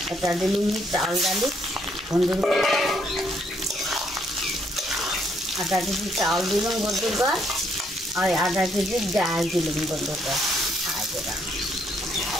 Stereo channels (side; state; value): both; normal; correlation 0.71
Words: এটা দিলুম চাল ডালি বন্ধুগণ আধা কেজি চাউল দিলাম বন্ধুগণ আর আধা কেজি ডাল দিলাম বন্ধুগণ